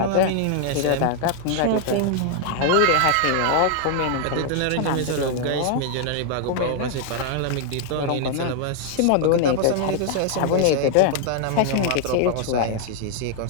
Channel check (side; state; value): both; different; correlation 0.00